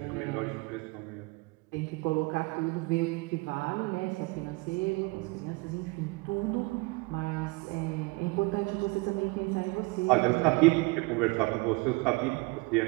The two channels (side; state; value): left; quieter; 26.3 dB